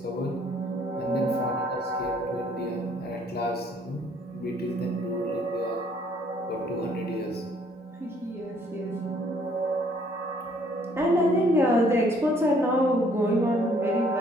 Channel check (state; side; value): normal; both; correlation 0.62